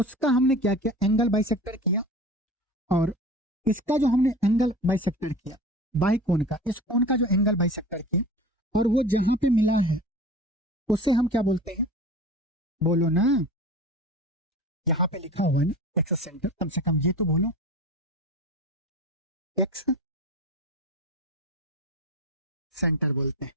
हमने क्या किया एंगल बाइसेक्टर किया, और इसका जो हमने एंगल बाइसेक्टर किया बाही कोण का, इस कोण का जो एंगल बाइसेक्टर किया, और वो जहां पे मिला है उसे हम क्या बोलते हैं, बोलो ना, यहाँ पे लिखा हुआ है ना एक्स सेंटर, कम से कम ये तो बोलो, एक्स सेंटर बोलते हैं,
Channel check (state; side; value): normal; both; correlation 0.35